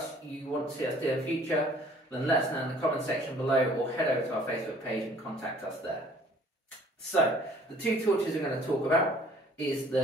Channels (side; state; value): both; normal; correlation 0.55